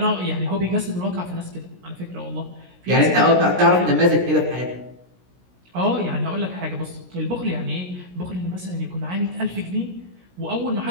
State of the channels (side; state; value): left; late; 17 ms